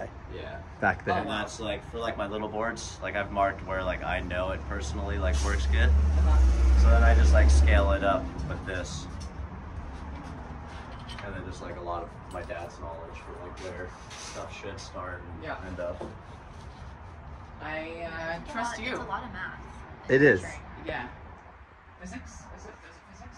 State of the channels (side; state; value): both; identical; correlation 1.00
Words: Yeah. back there. And that's like for like my little boards, like I've marked where like I know it personally like works good. So then I just like scale it up with this. And then just like a lot of my dad's knowledge for like where stuff should start and end up. I trust you. It's a lot of math. It is. Yeah. Physics? Is it physics?